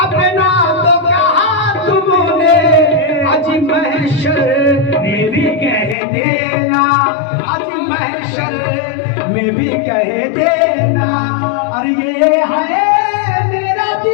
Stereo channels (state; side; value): drops out; right; at 6.0 s